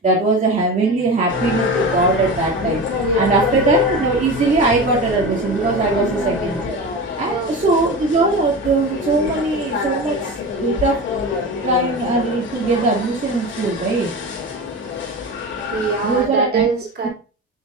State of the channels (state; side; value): normal; both; correlation 0.28